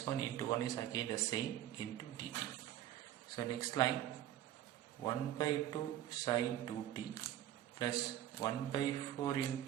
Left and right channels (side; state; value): left; quieter; 12.3 dB